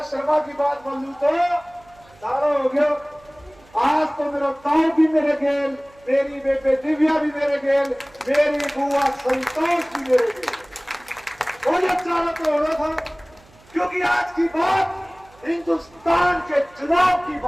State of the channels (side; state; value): right; noise; hum, 28 dB below the sound